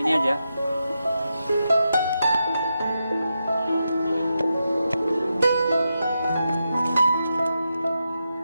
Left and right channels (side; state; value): both; inverted; correlation -0.87